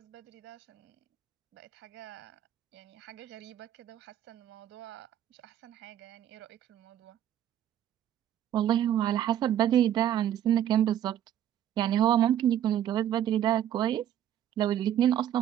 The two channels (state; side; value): quieter; left; 10.9 dB